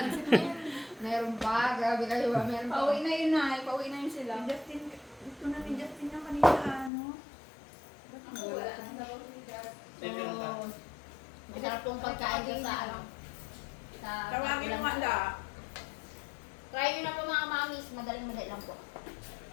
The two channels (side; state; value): right; drops out; at 6.9 s